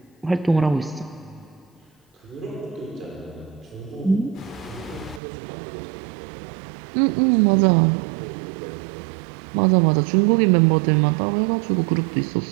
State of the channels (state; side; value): drops out; left; at 5.2 s